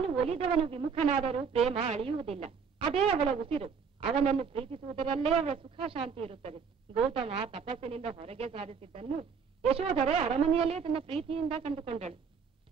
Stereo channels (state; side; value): quieter; left; 6.1 dB